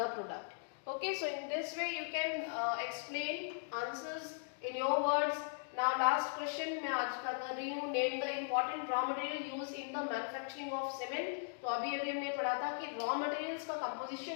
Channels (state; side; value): silent; right; digital silence